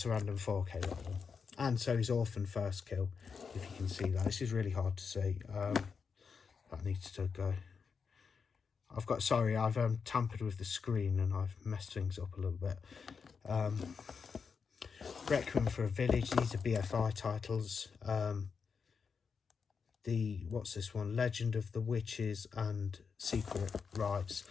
a random 4K, that one. And so is Orphan First Kill, if you can see that. This is really hard to see. That needs to go. I've tampered with the screen and I've messed things up a little bit. Requiem for a Village. These are BFI titles. What's this one? Legend of the Witches and Secret Rites,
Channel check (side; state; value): right; quieter; 5.7 dB